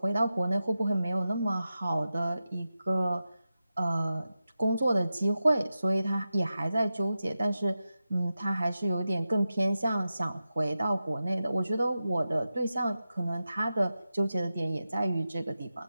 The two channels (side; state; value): both; inverted; correlation -0.92